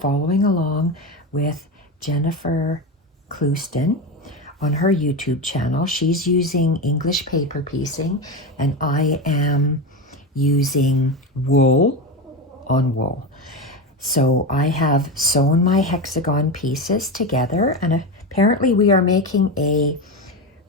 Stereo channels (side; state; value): both; normal; correlation 0.18